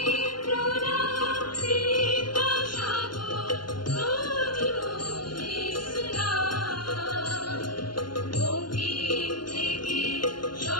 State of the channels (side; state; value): right; late; 0.71 ms